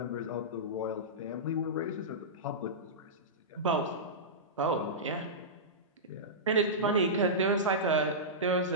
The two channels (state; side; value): normal; both; correlation -0.15